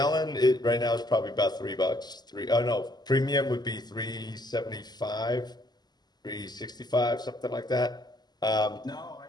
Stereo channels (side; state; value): right; late; 0.20 ms